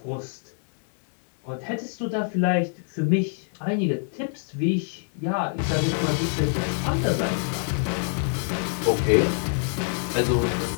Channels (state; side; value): silent; right; 61 dB below the other